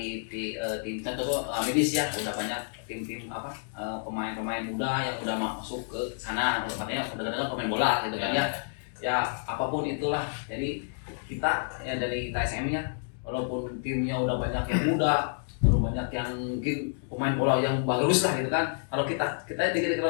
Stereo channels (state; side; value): silent; right; digital silence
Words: tim contoh Amidis ya, udah banyak tim-tim pemain-pemain muda yang udah masuk ke sana, katanya udah pemain bola gitu kan ya. Ya apapun itulah, jadi kita ya dari KSM-nya walaupun timnya udah banyak yang muda, udah banyak yang mungkin pemain bola yang bagus lah gitu kan, kalau